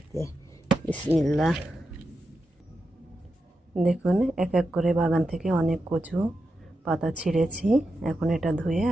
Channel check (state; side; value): normal; both; correlation 0.88